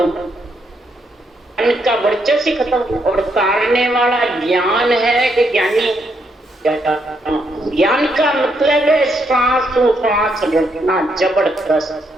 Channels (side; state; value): both; normal; correlation 0.76